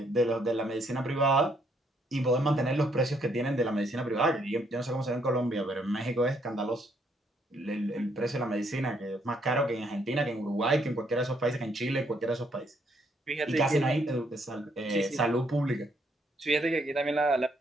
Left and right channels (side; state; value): both; normal; correlation 0.71